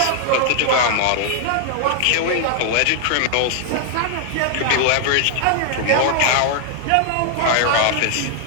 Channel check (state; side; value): different; both; correlation 0.00